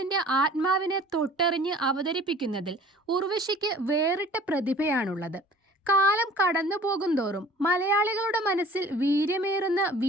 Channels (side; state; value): both; normal; correlation 0.48